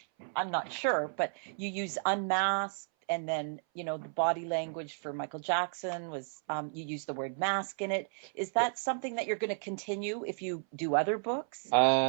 I'm not sure, but you use Unmasked, and then, the body language for Michael Jackson was, you use the word mask in it. Is that something that you're going to continue if you do other books?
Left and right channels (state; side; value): silent; left; 56 dB below the other